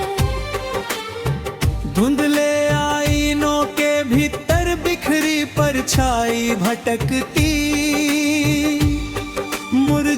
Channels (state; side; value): identical; both; correlation 1.00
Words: धुंधले आईनों के भीतर बिखरी परछाई भटकती,